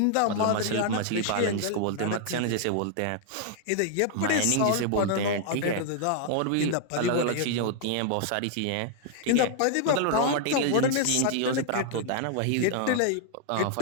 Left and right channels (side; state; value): both; different; correlation -0.01